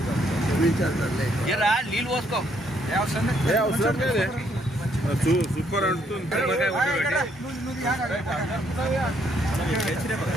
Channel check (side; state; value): both; normal; correlation 0.70